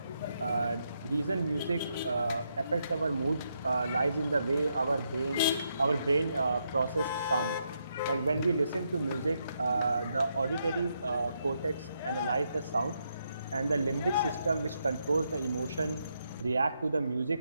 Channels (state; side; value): inverted; both; correlation -0.79